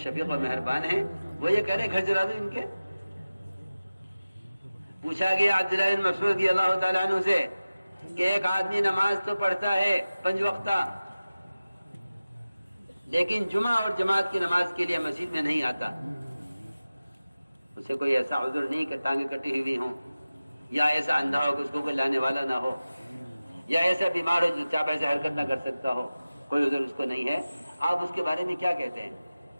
شفیق اور مہربان ہیں وہ یہ کہہ رہے گھر جلا دو ان کے. پوچھا گیا عبداللہ بن مسعود رضی اللہ تعالیٰ عنہ سے کہ ایک آدمی نماز تو پڑھتا ہے 5 وقتہ لیکن جمعہ اور جماعت کی نماز کے لیے مسجد میں نہیں آتا, اسے کوئی ایسا عذر نہیں کہ ٹانگیں کٹی ہوئی ہوں, یا ایسا اندھا ہو کہ اس کو کوئی لانے والا نہ ہو, یا ایسا بیمار ہو جو چاپ ایسے حرکت نہ کر سکتا ہو, کوئی عذر اس کو نہیں ہے. آپ اس کے بارے میں کیا کہتے ہیں؟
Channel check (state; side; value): inverted; both; correlation -0.96